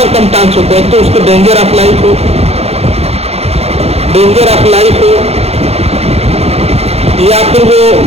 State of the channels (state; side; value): late; left; 0.30 ms